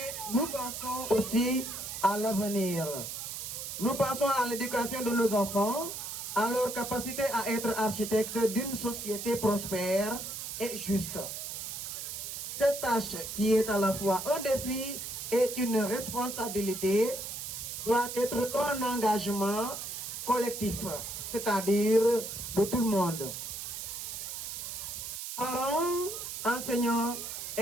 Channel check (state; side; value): noise; right; hiss, 6 dB below the sound